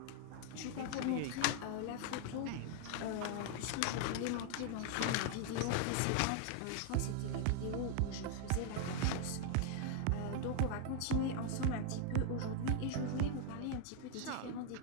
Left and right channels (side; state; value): both; different; correlation 0.00